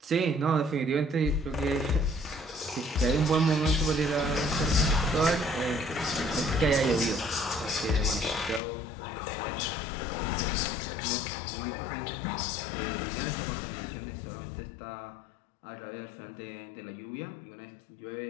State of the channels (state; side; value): drops out; right; at 8.6 s